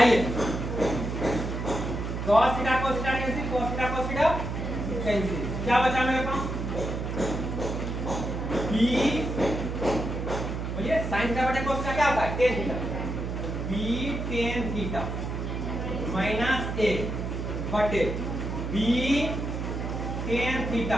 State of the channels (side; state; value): right; noise; hum, 4 dB below the sound